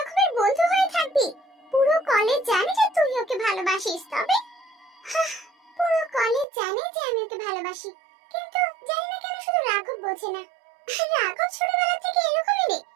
বন্ধু হয়ে থাকবি? পুরো কলেজ জানে যে তুই ওকে ভালোবাসিস। তবে পুরো কলেজ জানে যে আমি ওকে ভালোবাসি, কিন্তু জানি না কেন শুধু রাঘব বোঝে না। রাঘব ছোটবেলা থেকে এরকমই রে,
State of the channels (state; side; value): drops out; left; at 6.5 s